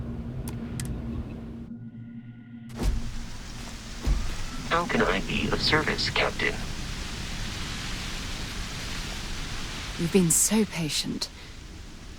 How can I be of service, Captain? You've been so patient.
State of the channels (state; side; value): identical; both; correlation 1.00